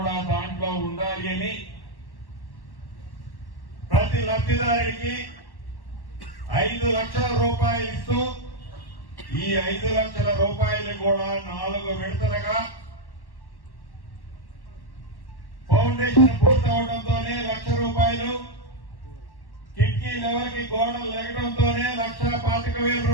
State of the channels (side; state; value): right; late; 1.1 ms